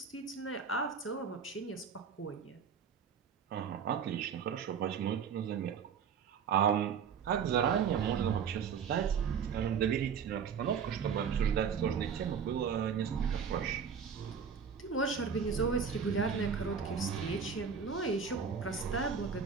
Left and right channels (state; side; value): quieter; left; 6.7 dB